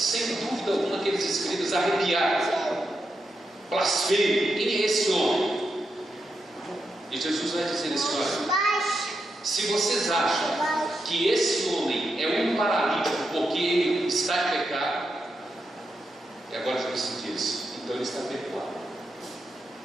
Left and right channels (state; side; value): normal; both; correlation 0.86